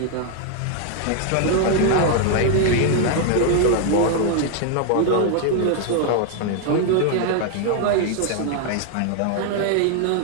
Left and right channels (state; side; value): different; both; correlation 0.00